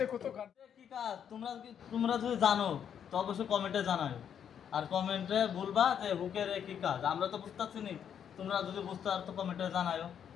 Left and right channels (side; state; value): right; quieter; 8.5 dB